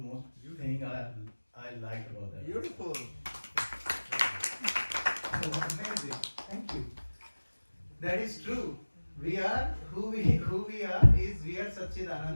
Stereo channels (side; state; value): both; inverted; correlation -1.00